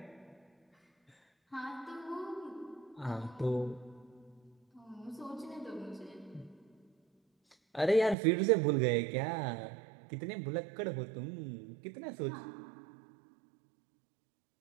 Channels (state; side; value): drops out; left; at 8.2 s